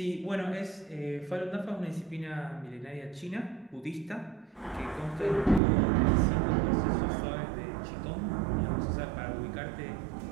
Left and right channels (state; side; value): drops out; left; at 5.6 s